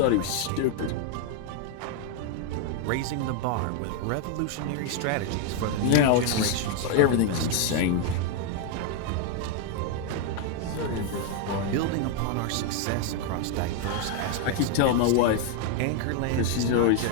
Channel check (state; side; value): different; both; correlation 0.00